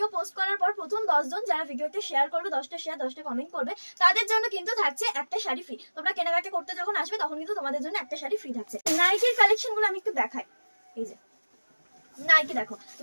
পোস্ট করার পর প্রথম 10 জন যারা ভিডিওতে শেয়ার করবে, 10টা শেয়ার 10টা কমেন্ট করবে, তাদের জন্য কিন্তু থাকছে একটা শাড়ি ফ্রি। তোমরা কেনাকাটা করতে যখন আসবে তখন কিন্তু তোমাদের জন্য একটা শাড়ি ফ্রি থাকছে। নাইটির কালেকশনগুলো আমি একটু দেখাই। এই যে নাইটি দেখো,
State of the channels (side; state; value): both; inverted; correlation -1.00